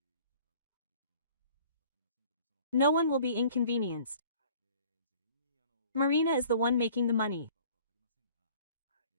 No one will be inconvenienced. Marina is the one making the money.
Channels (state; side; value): inverted; both; correlation -0.52